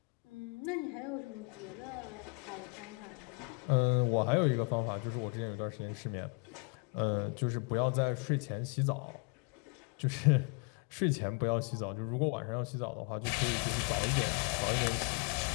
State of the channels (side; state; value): right; quieter; 35.5 dB